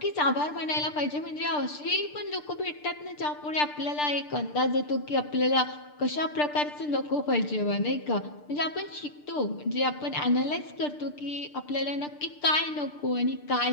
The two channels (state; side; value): late; right; 6.7 ms